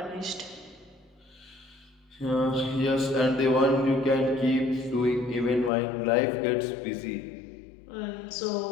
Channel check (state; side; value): drops out; right; at 5.7 s